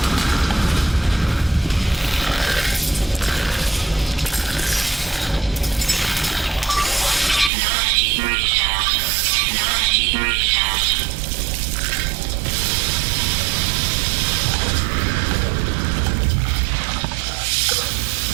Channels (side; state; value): left; drops out; at 7.5 s